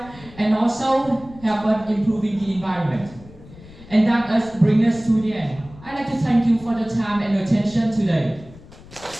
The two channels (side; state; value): left; noise; rumble, 20 dB below the sound